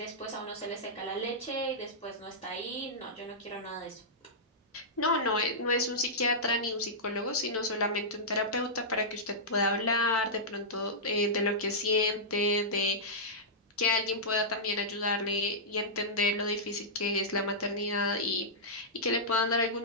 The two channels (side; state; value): both; normal; correlation -0.12